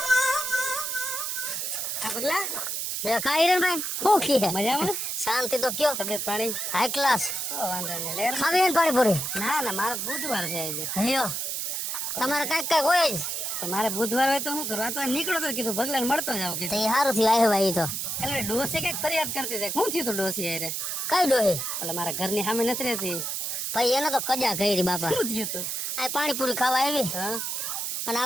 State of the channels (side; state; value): right; noise; hiss, 2 dB below the sound